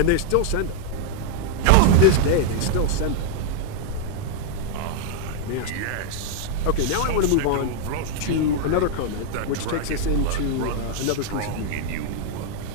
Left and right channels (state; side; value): different; both; correlation 0.00